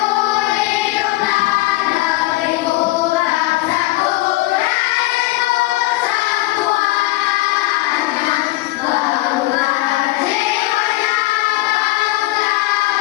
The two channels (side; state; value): right; quieter; 19.0 dB